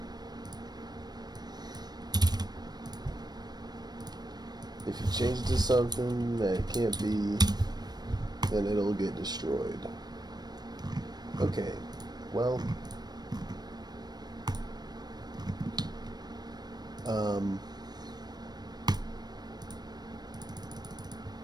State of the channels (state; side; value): late; left; 0.19 ms